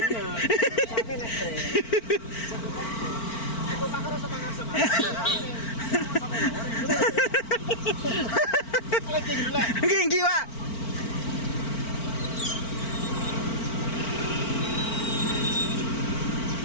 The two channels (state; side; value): late; right; 4.4 ms